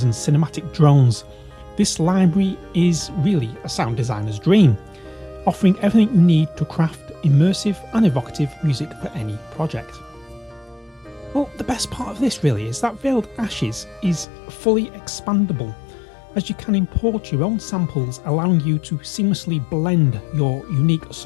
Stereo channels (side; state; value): right; drops out; at 14.2 s